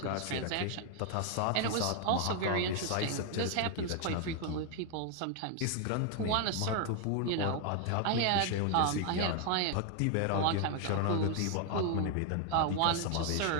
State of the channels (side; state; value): both; different; correlation 0.00